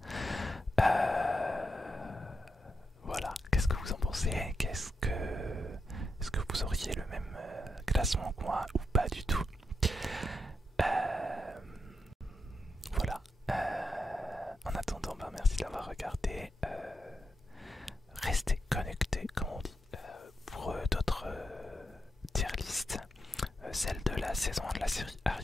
Voilà, qu'est-ce que vous en pensez? Est-ce que vous auriez le même classement que moi ou pas du tout? Voilà. En attendant, bah, merci d'avoir regardé. Restez connectés, comme on dit, pour d'autres tier lists. Celle de la saison 1 de la série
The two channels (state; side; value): normal; both; correlation 0.85